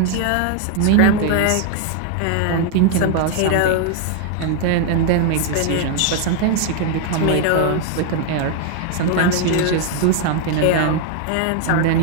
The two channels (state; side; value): different; both; correlation 0.00